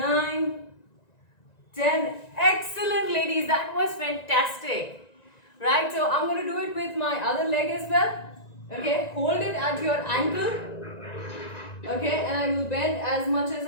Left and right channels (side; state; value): right; late; 1.9 ms